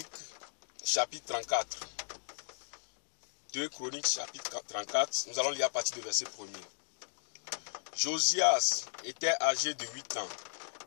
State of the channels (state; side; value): silent; right; digital silence